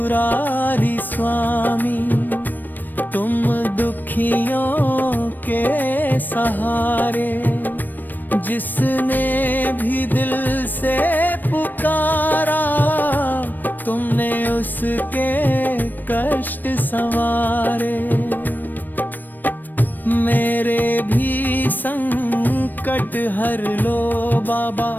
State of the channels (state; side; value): late; right; 0.090 ms